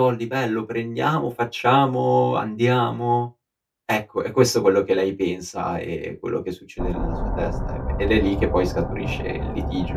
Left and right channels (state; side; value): identical; both; correlation 1.00